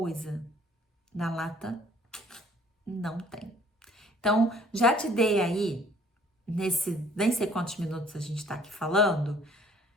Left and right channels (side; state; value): both; normal; correlation 0.57